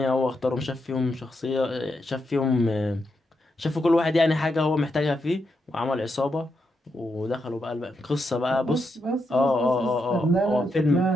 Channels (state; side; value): normal; both; correlation 0.83